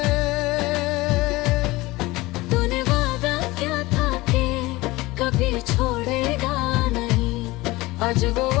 तूने वादा क्या था कि कभी छोड़ेगा नहीं, आज वो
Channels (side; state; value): right; quieter; 20.5 dB